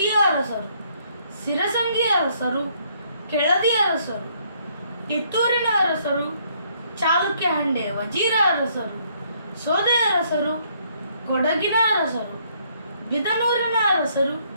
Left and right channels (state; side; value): inverted; both; correlation -0.68